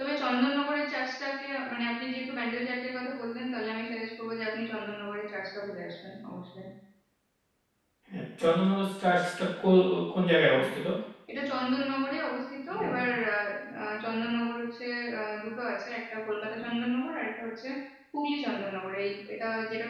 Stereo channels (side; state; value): both; identical; correlation 1.00